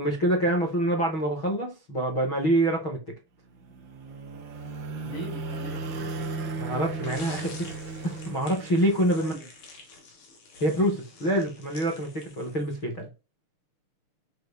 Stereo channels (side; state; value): right; late; 6.5 ms